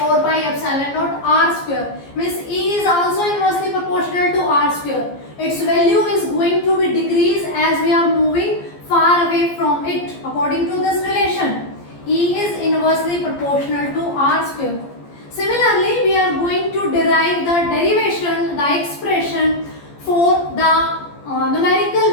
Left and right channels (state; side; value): late; right; 14 ms